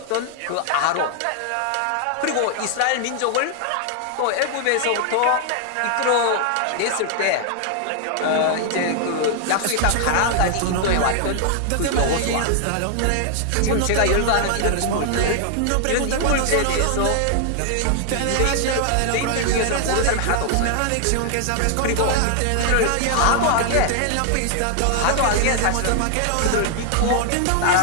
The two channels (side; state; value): both; different; correlation 0.00